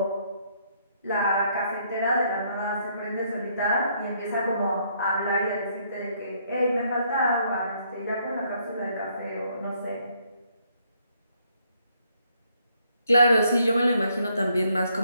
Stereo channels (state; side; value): inverted; both; correlation -0.70